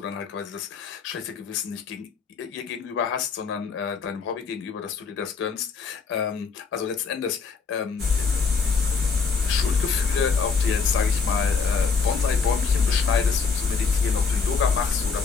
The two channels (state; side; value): quieter; right; 5.2 dB